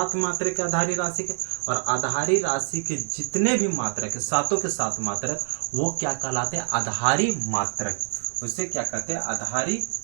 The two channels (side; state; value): left; silent; 61 dB below the other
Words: मात्रक है आधारी राशि के, और आधारी राशि के जितने भी मात्रक है, सातों के सात मात्रक, वो क्या कहलाते हैं? आधारी मात्रक। उसे क्या कहते हैं? आधारी